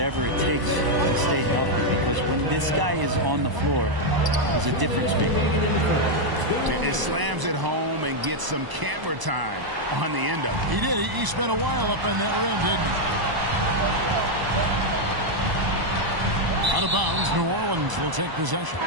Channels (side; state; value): left; late; 1.0 ms